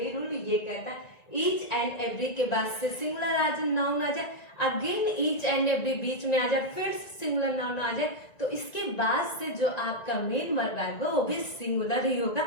रूल ये कहता है ईच एंड एवरी के बाद से सिंगुलर नाउन आ जाए, अगेन ईच एंड एवरी बीच में आ जाए, फिर सिंगुलर नाउन आ जाए, तो इसके बाद से जो आपका मेन वर्ब आएगा वो भी सिंगुलर ही होगा,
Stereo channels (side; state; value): right; late; 1.9 ms